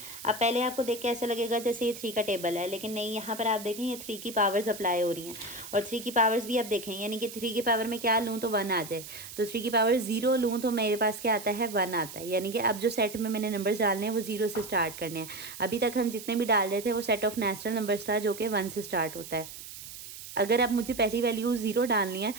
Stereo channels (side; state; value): right; noise; hiss, 13 dB below the sound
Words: अब पहले आपको देख के ऐसा लगेगा जैसे ये 3 का टेबल है, लेकिन नहीं, यहाँ पर आप देखें ये 3 की पावर्स अप्लाई हो रही हैं, और 3 की पावर्स भी आप देखें, यानी कि 3 की पावर में क्या लूँ तो 1 आ जाए, तो 3 की पावर 0 लूँ तो मेरे पास क्या आता है, 1 आता है। यानी कि अब जो सेट में मैंने नंबर्स डालने हैं वो 0 से स्टार्ट करने हैं। अभी तक हम जितने भी डाल रहे थे वो सेट ऑफ नेचुरल नंबर्स था जो कि 1 से स्टार्ट होता है। अगर अब मुझे पहली वैल्यू 0 डालनी है